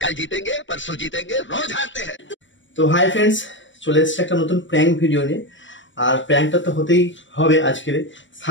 কাল জিতেंगे परसों जीतेंगे रोज हारते हैं। তো হাই ফ্রেন্ডস, চলে এসেছে একটা নতুন প্র্যাঙ্ক ভিডিও নিয়ে। আর প্র্যাঙ্কটা তো হতেই হবে, আজকের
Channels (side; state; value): right; late; 0.55 ms